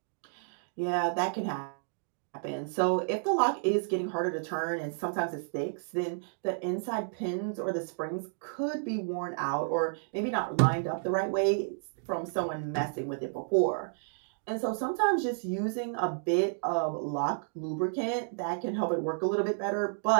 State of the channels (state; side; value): silent; left; digital silence